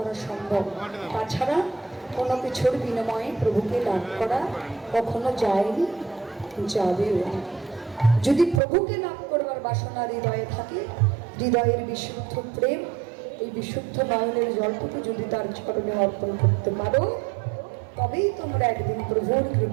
সম্ভব। তাছাড়া কোনো কিছুর বিনিময়ে প্রভুকে লাভ করা কখনো যায়নি, যাবেও না। যদি প্রভুকে লাভ করবার বাসনা হৃদয়ে থাকে, হৃদয়ের বিশুদ্ধ প্রেম, এই বিশুদ্ধ নয়নের জলটুকু যদি তার চরণে অর্পণ করতে পারো, তবেই তোমরা একদিন প্রভুর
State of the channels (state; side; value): drops out; left; at 8.6 s